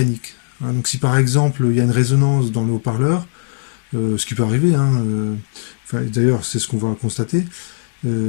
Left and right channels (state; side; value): silent; right; digital silence